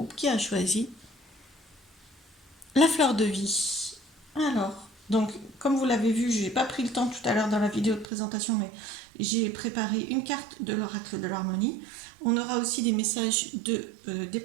qui a choisi la fleur de vie. Alors, donc, comme vous l'avez vu, je n'ai pas pris le temps tout à l'heure dans la vidéo de présentation, mais j'ai préparé une carte de l'oracle de l'harmonie. On aura aussi des messages des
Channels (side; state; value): left; drops out; at 8.1 s